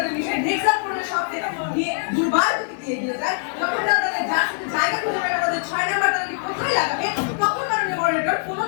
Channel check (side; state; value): right; silent; digital silence